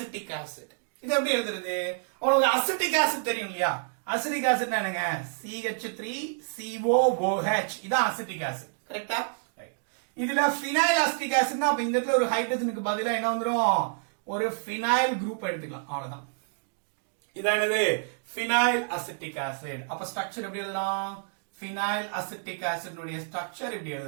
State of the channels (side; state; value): left; silent; digital silence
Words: acid. இது எப்படி எழுதுறது? உங்களுக்கு அசிட்டிக் ஆசிட் தெரியும் இல்லையா? அசிட்டிக் ஆசிட்னா என்னங்க? CH3COOH. இதான் அசிட்டிக் ஆசிட், கரெக்ட்டா? ரைட். இதுல phenyl acetic acidனா அப்ப இந்த இடத்துல ஒரு ஹைட்ரஜனுக்கு பதிலா என்ன வந்துரும்? ஒரு phenyl குரூப் எடுத்துக்கலாம், அவ்வளவுதான். இதான் என்னது? phenyl acetic acid. அப்ப ஸ்ட்ரக்சர் எப்படி எழுதலாம்? phenyl acetic acid உடைய ஸ்ட்ரக்சர் இப்படி